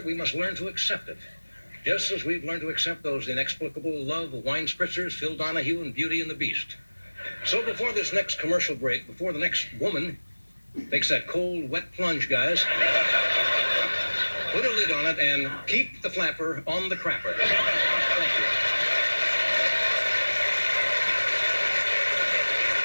we must learn to accept it. Just as we've learned to accept those inexplicable love wine spritzers, Phil Donahue, and Beauty and the Beast. So before this next commercial break, before the next woman takes that cold, wet plunge, guys, put a lid on it and keep the flapper on the crapper. Thank you.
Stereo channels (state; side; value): inverted; both; correlation -1.00